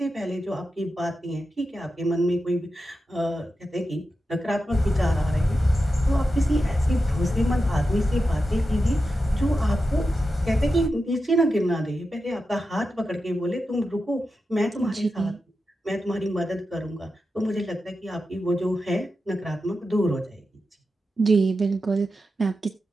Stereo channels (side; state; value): both; normal; correlation 0.90